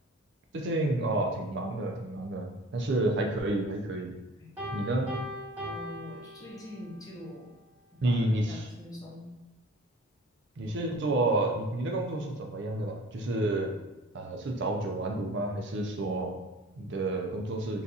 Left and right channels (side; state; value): both; normal; correlation 0.45